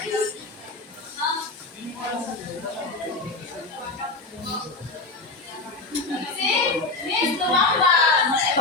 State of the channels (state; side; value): quieter; right; 3.3 dB